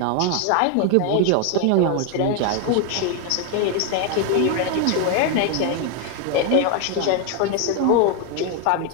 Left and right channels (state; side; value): different; both; correlation 0.01